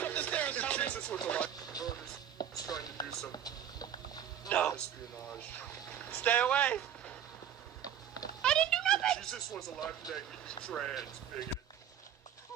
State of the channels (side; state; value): left; quieter; 9.7 dB